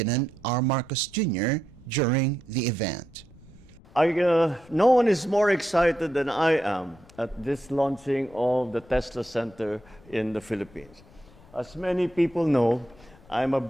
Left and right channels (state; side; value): noise; left; rumble, 24 dB below the sound